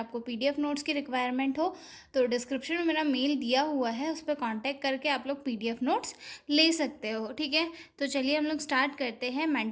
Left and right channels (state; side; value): identical; both; correlation 1.00